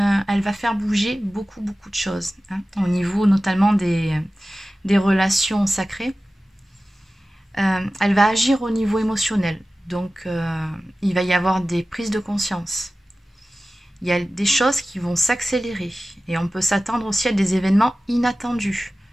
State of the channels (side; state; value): both; normal; correlation 0.96